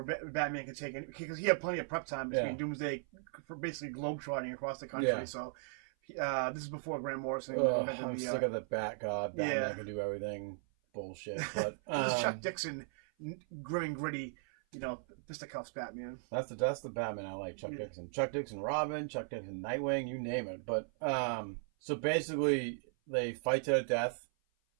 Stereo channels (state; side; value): silent; left; 53 dB below the other